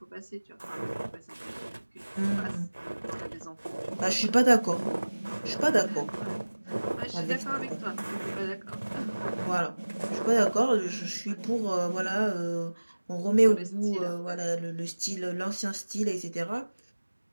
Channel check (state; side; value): inverted; both; correlation -1.00